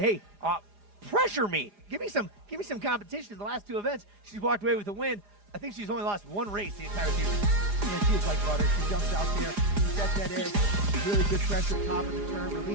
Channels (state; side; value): late; left; 4.9 ms